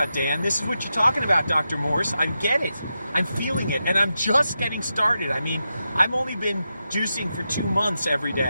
Dan. This is what you're talking about, Dr. Morse. I get it. I'm feeling it, and I'm just getting started. I mean, I've only been juicing for 2 months every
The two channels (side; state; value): both; inverted; correlation -0.88